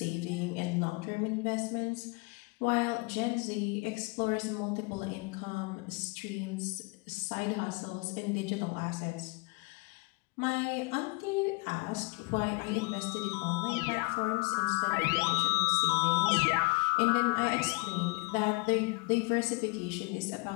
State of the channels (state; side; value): quieter; right; 29.0 dB